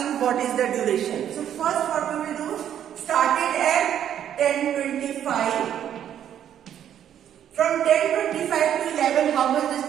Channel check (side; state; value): left; quieter; 10.0 dB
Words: what is the duration. So first what we will do, started at 10:25. From 10:25 to 11, how much this